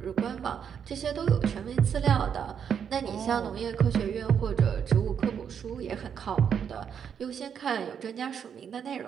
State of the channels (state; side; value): quieter; left; 7.7 dB